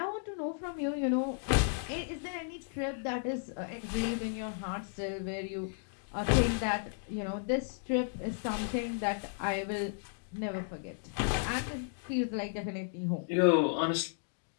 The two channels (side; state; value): right; silent; digital silence